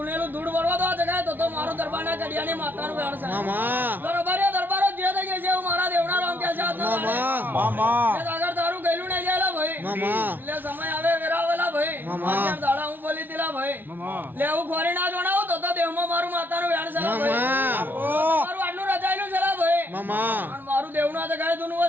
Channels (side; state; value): left; late; 0.092 ms